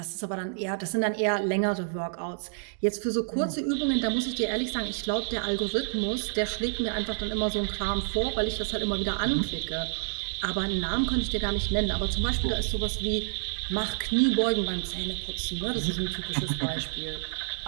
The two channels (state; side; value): silent; left; digital silence